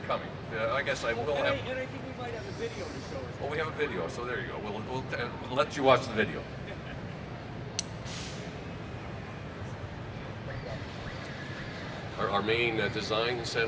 coming. I guess I will have... And I think we might have a video to show us. Oh, we have a video, so there you go. We'll let you watch the video. Our main design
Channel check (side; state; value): both; identical; correlation 1.00